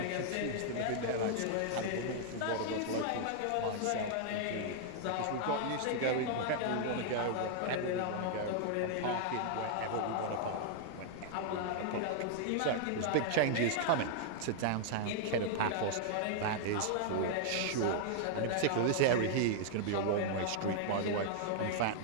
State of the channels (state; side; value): different; both; correlation -0.01